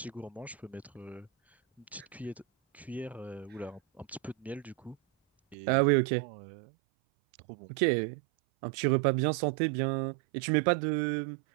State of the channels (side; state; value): left; drops out; at 5.6 s